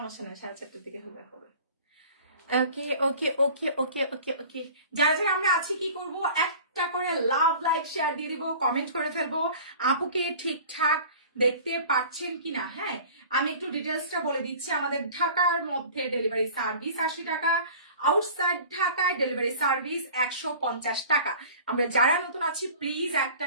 নাই, 4:30টার দিকে হবে হবে। ওকে ওকে ওকে ওকে ওকে ওকে, যারা যারা আমরা আছি কি করব, একটা করে লাভ লাইক শেয়ার দিয়ে দিব, কমেন্ট করে ফেলবো আপুকে ঠিকঠাক দেখতে পাচ্ছেন কিনা। হ্যাঁ, আমি একটু ডিটেলসটা বলে দিচ্ছি। আমাদের ঢাকার মধ্যে ডেলিভারি সার্ভিস 80 টাকা, আউটসাইড ঢাকায় ডেলিভারি সার্ভিস 150 টাকা। আমরা যারা নতুন আছি প্লিজ একটা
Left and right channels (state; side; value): inverted; both; correlation -0.44